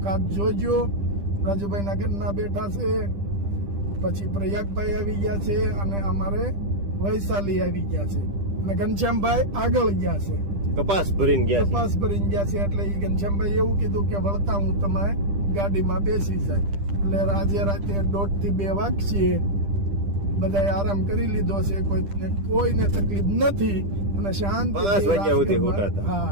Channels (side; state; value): left; late; 10 ms